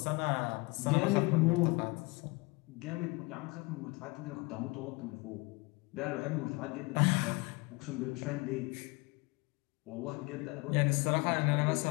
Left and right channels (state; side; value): quieter; right; 25.9 dB